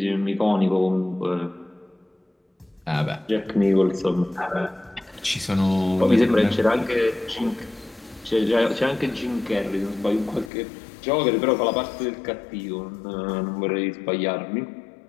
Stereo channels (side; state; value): right; drops out; at 10.5 s